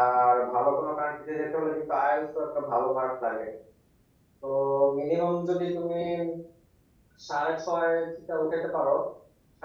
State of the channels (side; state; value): both; identical; correlation 1.00